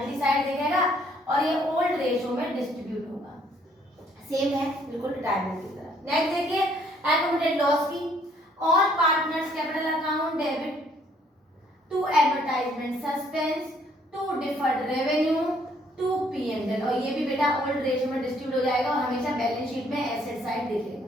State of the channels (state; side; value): normal; both; correlation 0.64